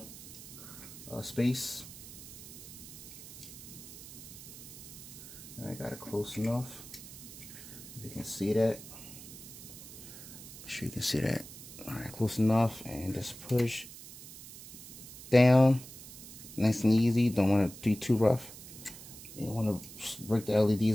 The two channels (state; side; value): noise; right; hiss, 14 dB below the sound